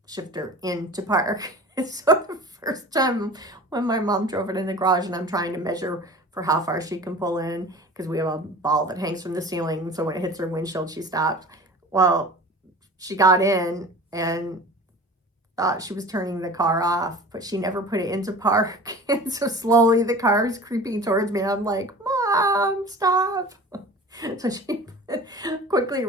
shifter into park. So the first time when my mom drove it in the garage and I'm trying to measure for how far she can pull in, because we have a ball that hangs from the ceiling, so when it hits her windshield, she stops. Well, she got in and thought she was turning the car off, but she never put it into park. And so slowly the car is creeping towards me. And I'm like, Mom, stop. So she quickly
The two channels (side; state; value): both; normal; correlation 0.40